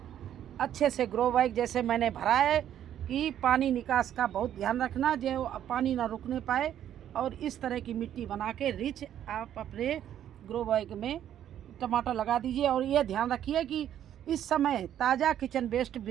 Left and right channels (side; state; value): left; quieter; 10.6 dB